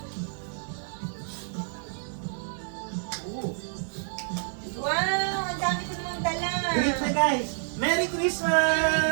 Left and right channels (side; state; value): left; silent; digital silence